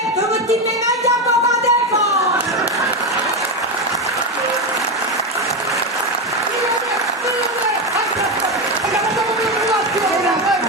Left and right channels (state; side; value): normal; both; correlation 0.13